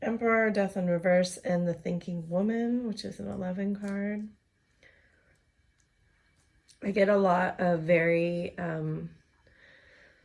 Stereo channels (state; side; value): identical; both; correlation 1.00